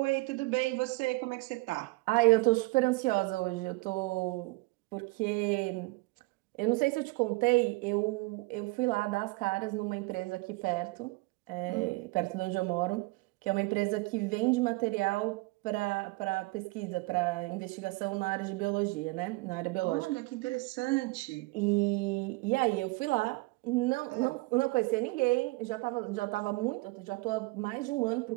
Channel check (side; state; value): left; quieter; 24.1 dB